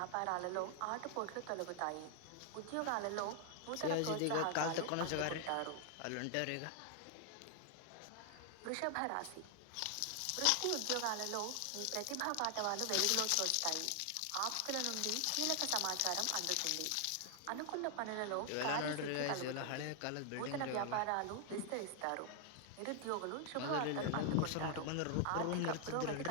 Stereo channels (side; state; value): both; different; correlation 0.00